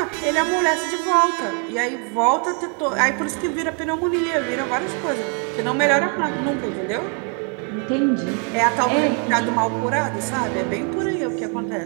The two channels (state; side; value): quieter; left; 39.3 dB